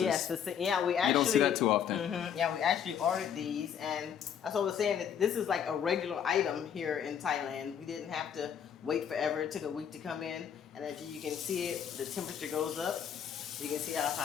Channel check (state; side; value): quieter; right; 8.4 dB